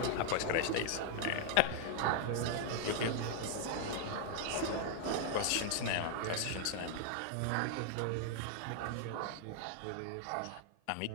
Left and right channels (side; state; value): both; different; correlation 0.00